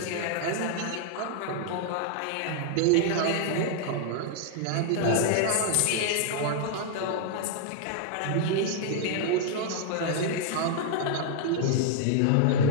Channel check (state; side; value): different; both; correlation 0.00